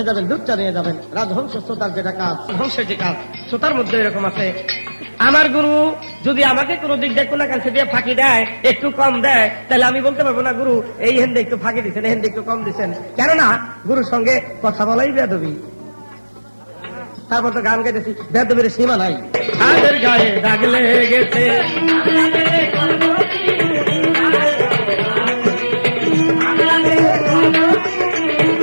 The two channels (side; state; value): both; inverted; correlation -1.00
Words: যাবেন, দুধটা নিয়ে যাবেন। রাজহংস শ্রোতার যেটা কাজ, হংসের যে কাজ, শ্রোতার মধ্যে এরকম আছে। আমার গুরু যদি আমাকে কোনো দিক দিয়ে কোনো কাছে দিয়ে ফাঁকি দেয়, একটু কম দেয়, তাহলে আমি বলতে পারবো না গুরু এই হেন্দে একটু ফাঁকি দিচ্ছেন, এই হেন্দে একটু কম দিচ্ছেন। কেননা গুরুর সঙ্গে কথা বলাই বেয়াদবি। তারপর তো গান গাইতেছি, বেয়াদবির সীমা নাই। হাতের গায়ে দাগ লেগেছে,